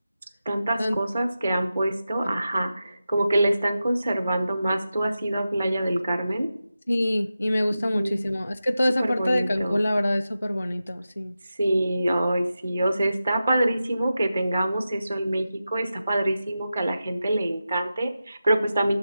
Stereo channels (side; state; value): both; inverted; correlation -0.92